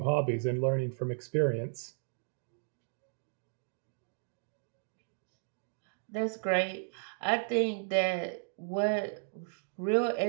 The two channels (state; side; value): silent; left; digital silence